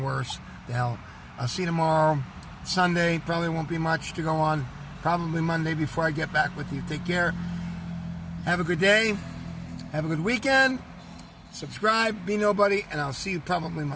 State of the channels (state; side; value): identical; both; correlation 1.00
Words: worse. The hell. I'll see you tomorrow. Sunday. Probably won't be much to go on. Probably Monday before I get back with you. Take care. Have a good day. Have a good weekend. Subscribe. Be nobody. And I'll see you probably